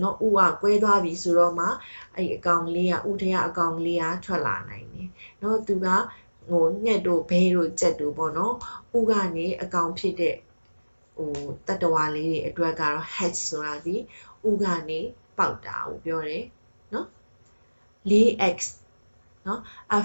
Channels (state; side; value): inverted; both; correlation -1.00